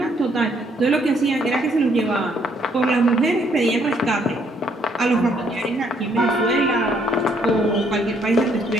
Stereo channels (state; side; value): normal; both; correlation 0.68